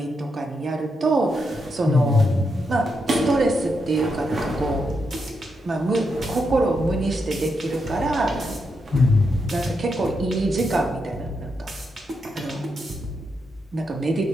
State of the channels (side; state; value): both; normal; correlation 0.83